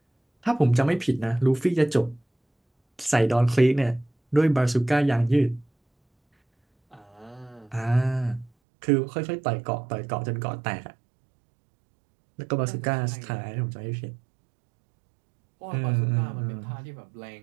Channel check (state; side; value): drops out; left; at 8.5 s